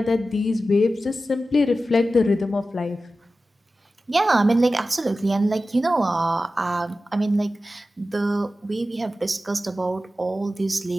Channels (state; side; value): normal; both; correlation 0.94